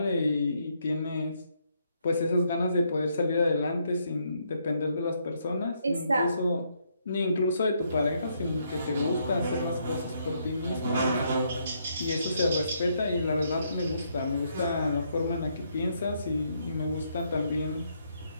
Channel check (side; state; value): both; inverted; correlation -0.74